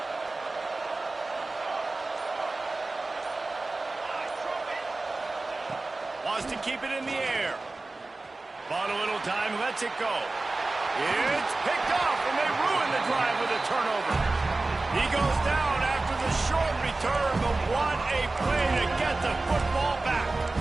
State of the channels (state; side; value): quieter; left; 3.3 dB